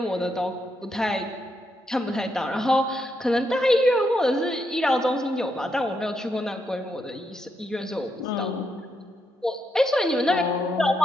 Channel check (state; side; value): normal; both; correlation 0.80